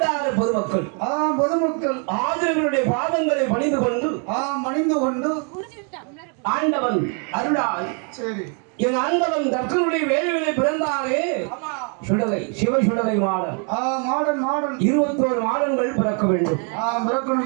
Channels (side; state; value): left; quieter; 39.2 dB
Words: பொதுமக்கள் ஆதரவுடைய பாதங்களை பணிந்து கொண்டு ஆண்டவன் அருளால் சரி என் ஆண்டவன் தர்க்கனுடைய வேள்விகளை பிறந்தாரே சுடலை சிவ சுடலை மாடன் 21 மாடன்கள் பிறக்க வேண்டும்.